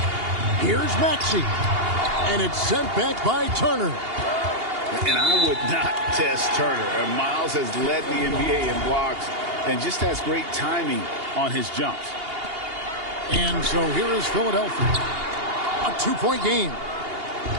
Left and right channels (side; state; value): left; late; 2.8 ms